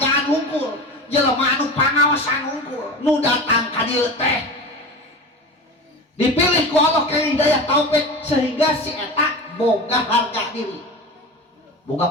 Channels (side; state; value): both; normal; correlation 0.30